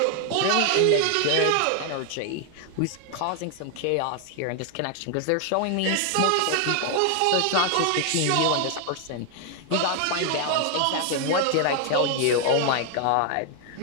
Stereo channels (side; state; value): both; different; correlation 0.00